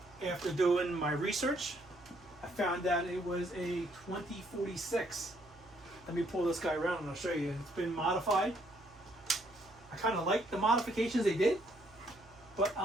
After doing my research, I found out it was a 2046. Let me pull this guy around and I'll show you. It's been modified. I kind of like the modifications they did, but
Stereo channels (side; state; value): right; noise; hum, 25 dB below the sound